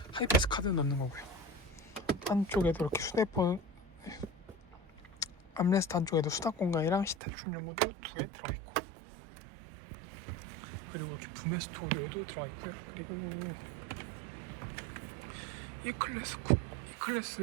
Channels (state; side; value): drops out; left; at 7.2 s